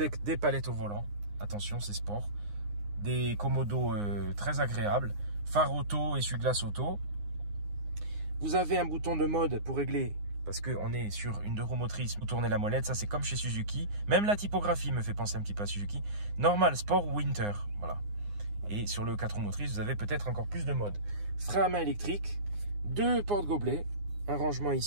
des palettes au volant. Attention, c'est sport. Des commodos très agréables. Phare auto, essuie-glace auto. Vous avez un bouton de mode pour régler, parce qu'on est sur une 2 roues motrices, vous tournez la molette, ça c'est comme chez Suzuki. Même la typographie me fait penser un petit peu à Suzuki. Normal, sport ou winter, voilà. Et sur le 4 roues motrices, vous avez peut-être encore plus de modes. Frein à main électrique, 2 porte-gobelets, un rangement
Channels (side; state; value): left; late; 9.7 ms